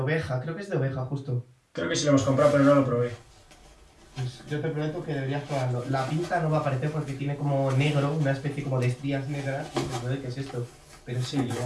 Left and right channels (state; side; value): identical; both; correlation 1.00